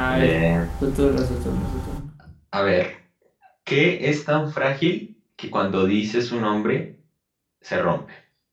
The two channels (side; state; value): both; identical; correlation 1.00